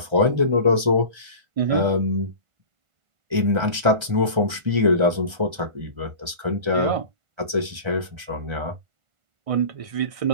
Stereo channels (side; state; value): left; late; 1.3 ms